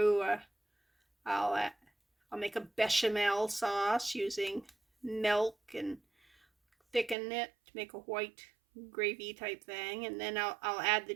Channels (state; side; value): drops out; left; at 7.2 s